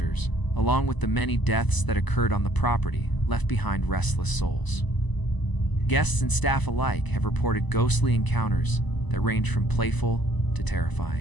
along with the many deaths that occurred on the property, left behind restless souls. Guests and staff alike have reported ghostly encounters that range from playful to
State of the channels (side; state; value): right; late; 1.0 ms